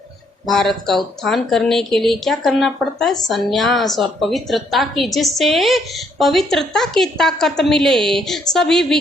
भारत का उत्थान करने के लिए क्या करना पड़ता है? सन्यास और पवित्रता की, जिससे पवित्रता की ताकत मिले। सभी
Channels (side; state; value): both; normal; correlation 0.70